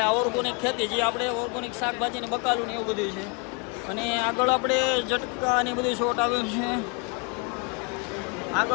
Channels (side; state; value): right; quieter; 35.1 dB